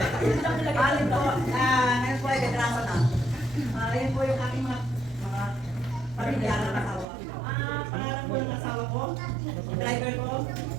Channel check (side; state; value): left; drops out; at 7.1 s